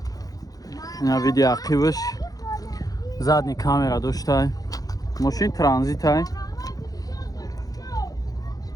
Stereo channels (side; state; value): right; late; 0.18 ms